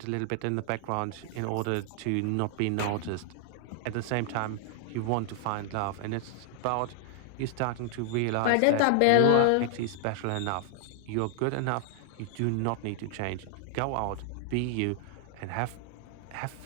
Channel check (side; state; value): both; different; correlation -0.01